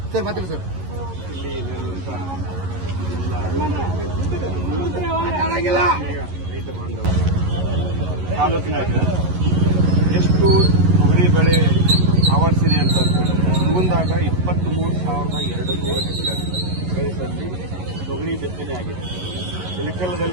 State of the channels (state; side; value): late; left; 11 ms